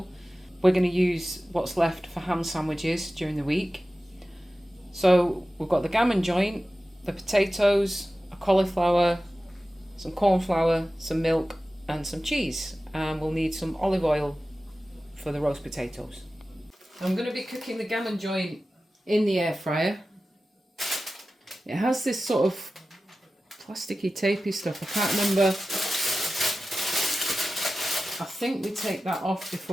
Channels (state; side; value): normal; both; correlation 0.95